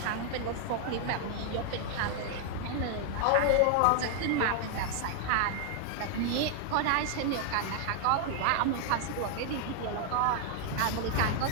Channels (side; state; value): both; different; correlation 0.00